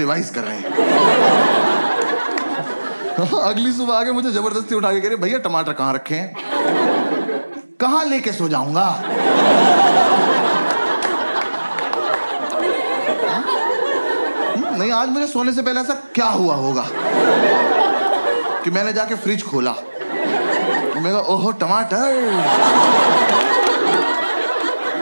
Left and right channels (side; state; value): both; inverted; correlation -1.00